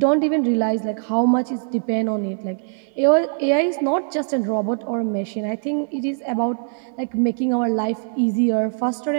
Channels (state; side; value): silent; left; 58 dB below the other